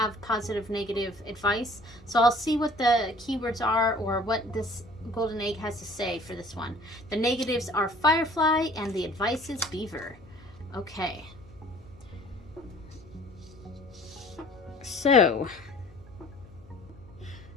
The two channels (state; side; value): noise; left; hum, 24 dB below the sound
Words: positive, negative advice. So I'll see what the keywords are or what this Golden Egg has to say for this one. The negatives are Firefly and the advice is Beaver. Okay. So